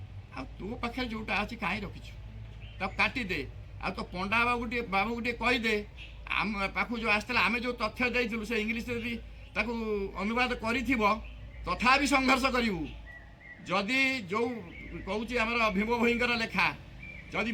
ଆଉ ତୋ ପାଖରେ ଯେଉଁଟା ଅଛି କାହିଁ ରଖିଛୁ ତାକୁ କାଟିଦେ। ଆଉ ତୋ ପଣ୍ଡା ବାବୁକୁ ଟିକେ କହିଦେ, ଆମ ପାଖକୁ ଯେଉଁ ଆସିଥିଲା ଆମେ ଯେଉଁ ତଥ୍ୟ ଦେଇଥିଲୁ ସେ ଇଂଲିଶରେ ଯଦି ତାକୁ ଅନୁବାଦ କରିଥିବ, ତଥାପି ସଂଘର୍ଷ କରିବୁ। ଯଦି ଯେଉଁ କହୁଛି ଆମର ଭୀମ ଭୋଇଙ୍କର ଲେଖା, ଯଦି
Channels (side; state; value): both; identical; correlation 1.00